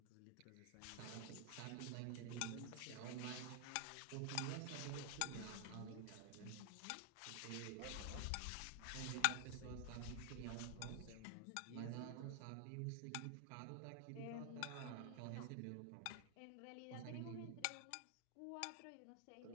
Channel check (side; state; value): both; different; correlation 0.00